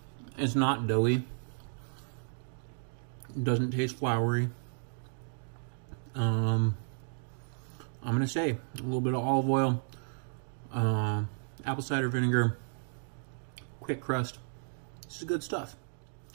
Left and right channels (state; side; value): silent; left; digital silence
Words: It's not doughy. It doesn't taste floury. I'm gonna say a little bit of olive oil, apple cider vinegar, quick crust. This is good stuff.